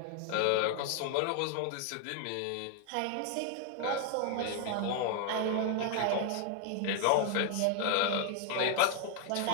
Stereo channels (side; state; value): both; different; correlation 0.01